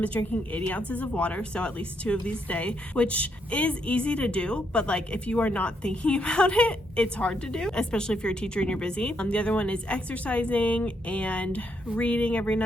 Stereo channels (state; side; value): normal; both; correlation 0.76